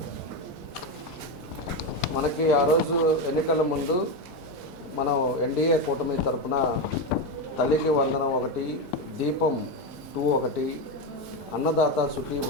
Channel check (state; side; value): normal; both; correlation 0.12